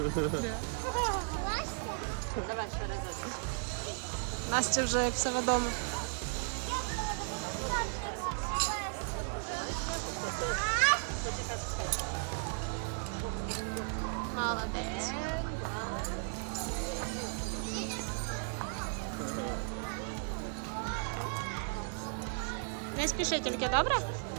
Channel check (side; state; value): left; silent; 54 dB below the other